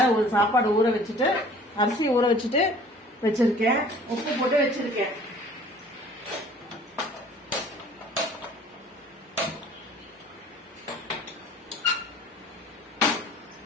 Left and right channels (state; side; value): normal; both; correlation 0.50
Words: ஒரு சாப்பாடு ஊற வச்சுட்டு, அரிசி ஊற வச்சுட்டு வச்சிருக்கேன். உப்பு போட்டு வச்சிருக்கேன்.